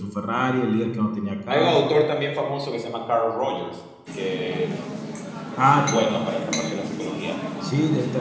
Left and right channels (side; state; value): both; identical; correlation 1.00